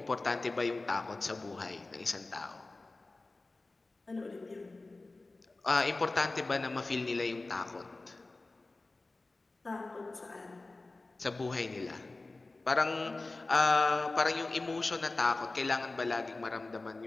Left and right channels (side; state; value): right; quieter; 3.3 dB